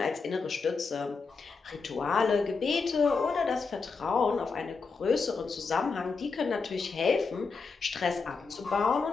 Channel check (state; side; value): quieter; right; 4.7 dB